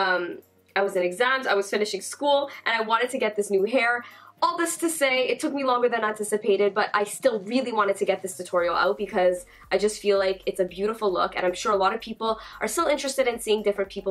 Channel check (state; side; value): identical; both; correlation 1.00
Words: was in exams, I was finishing school, and I wanted to get this new hair. All this to say, it took me longer than anticipated, but I still really wanted to get this tutorial out because I just feel like it's a beautiful look, and I'm sure a lot of people are still interested in seeing different